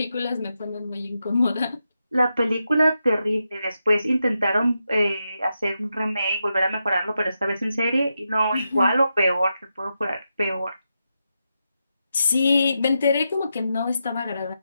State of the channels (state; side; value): inverted; both; correlation -0.86